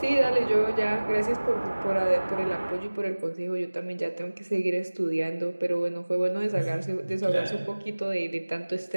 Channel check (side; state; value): both; inverted; correlation -1.00